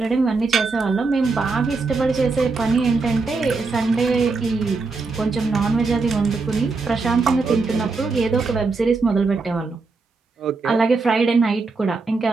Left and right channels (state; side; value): quieter; left; 4.1 dB